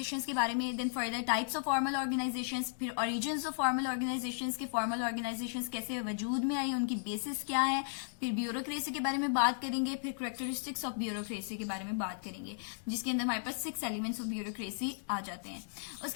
के बारे में, then further types of formal organisations, फिर ओरिजिन्स ऑफ फॉर्मल ऑर्गेनाइजेशंस के फॉर्मल ऑर्गेनाइजेशंस कैसे वजूद में आई, उनकी बेसिस क्या है, फिर ब्यूरोक्रेसी के बारे में बात करेंगे, फिर कैरेक्टरिस्टिक्स ऑफ ब्यूरोक्रेसी के बारे में बात करेंगे, जिसके अंदर हमारे पास 6 एलिमेंट्स ऑफ ब्यूरोक्रेसी आ जाते हैं।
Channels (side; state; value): right; silent; digital silence